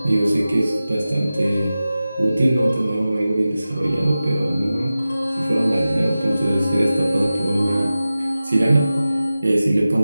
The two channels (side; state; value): both; inverted; correlation -0.95